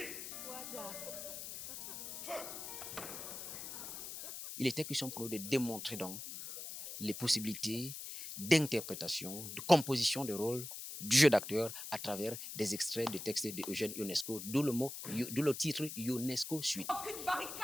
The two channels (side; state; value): left; noise; hiss, 8 dB below the sound